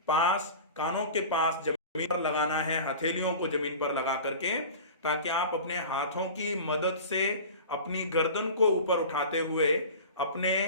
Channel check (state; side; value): inverted; both; correlation -0.36